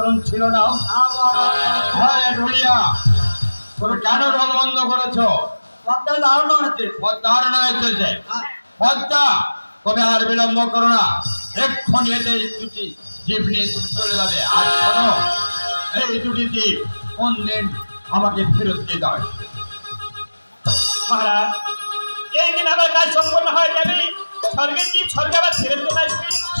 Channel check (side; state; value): both; inverted; correlation -1.00